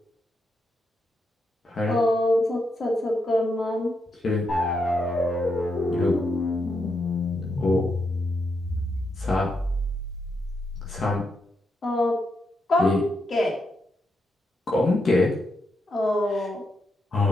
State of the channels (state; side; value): normal; both; correlation 0.82